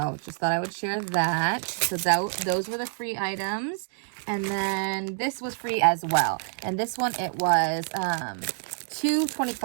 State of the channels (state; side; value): silent; left; digital silence